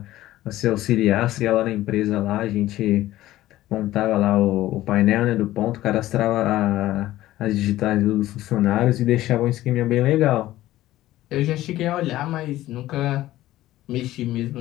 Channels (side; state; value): right; quieter; 15.3 dB